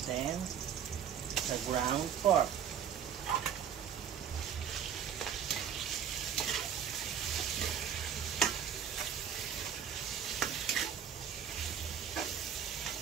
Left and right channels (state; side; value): quieter; left; 8.5 dB